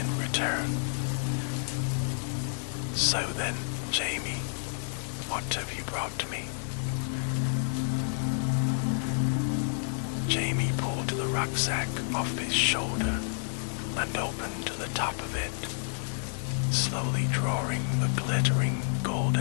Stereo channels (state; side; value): silent; right; digital silence